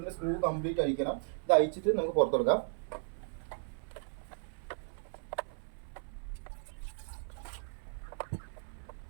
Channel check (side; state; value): left; silent; 54 dB below the other